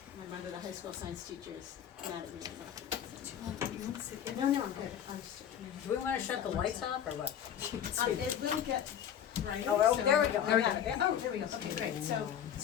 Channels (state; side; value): quieter; right; 9.4 dB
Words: My mother, the high school science teacher, is mad at me. No, I'm good. I'm just. Do we wanna shut the lights off or what? It will get brighter. Oh, so- there we go. There we I go. got it. Oh, there we go. Okay, great.